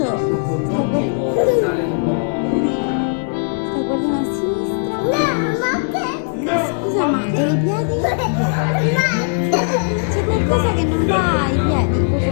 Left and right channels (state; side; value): silent; right; 58 dB below the other